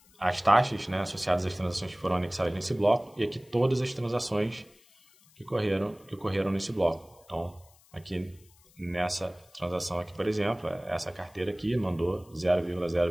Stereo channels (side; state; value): left; noise; hiss, 28 dB below the sound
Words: as taxas, né, associadas às transações que foram anexadas nesse bloco, e aqui todas as transações que ocorreram nesse bloco. Então, aqui nessa transação aqui, por exemplo, essa carteira aqui mandou